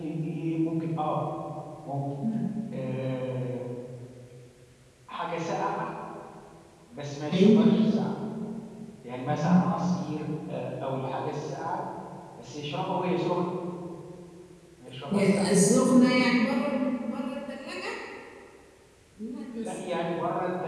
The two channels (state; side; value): identical; both; correlation 1.00